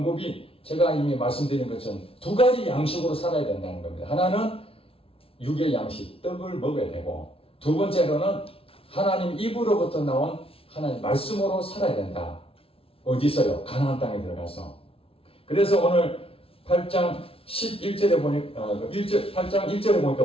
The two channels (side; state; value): right; late; 0.27 ms